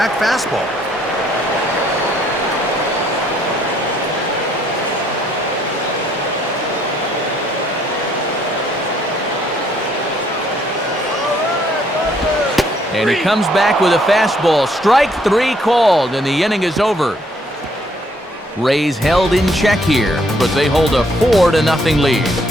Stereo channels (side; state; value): both; normal; correlation 0.67